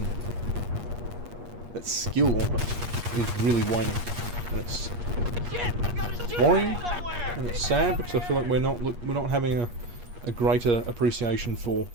that skill almost, is really waning, and it's worrying, and it's sad, because I feel like we're not having a greater appreciation for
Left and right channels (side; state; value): left; late; 8.4 ms